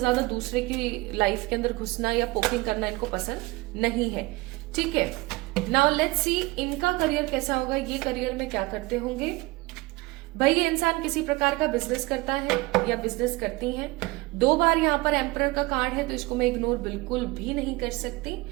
दूसरे की लाइफ के अंदर घुसना या पोकिंग करना इनको पसंद नहीं है, ठीक है। नाउ लेट्स सी इनका करियर कैसा होगा, ये करियर में क्या करते होंगे। भाई ये इंसान किसी प्रकार का बिजनेस करता है या बिजनेस करती हैं। 2 बार यहाँ पर एम्परर का कार्ड है तो इसको मैं इग्नोर बिल्कुल भी नहीं कर सकती।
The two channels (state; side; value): quieter; left; 22.2 dB